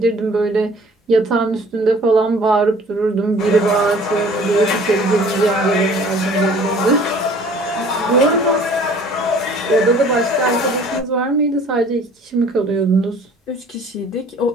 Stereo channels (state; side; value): normal; both; correlation 0.51